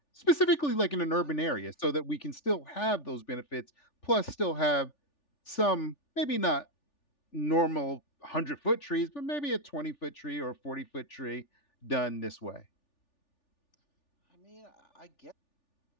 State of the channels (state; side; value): late; right; 3.4 ms